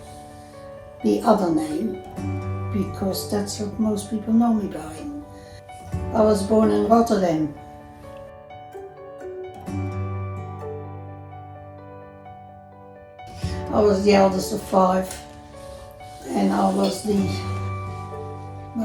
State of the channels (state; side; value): identical; both; correlation 1.00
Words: the other name because that's what most people know me by. I was born in Rotterdam. I was the eldest of 5 and I was